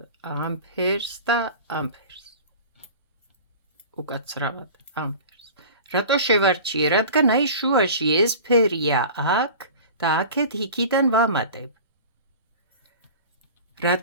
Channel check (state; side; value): inverted; both; correlation -0.38